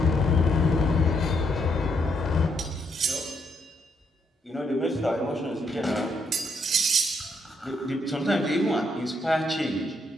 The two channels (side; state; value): both; normal; correlation 0.75